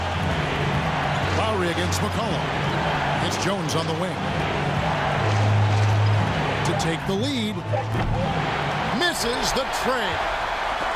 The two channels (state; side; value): identical; both; correlation 1.00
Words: Lowry against McCollum. It's Jones on the wing. To take the lead. Misses the trade.